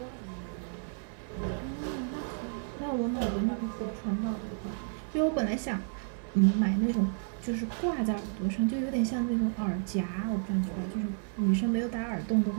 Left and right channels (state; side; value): silent; left; digital silence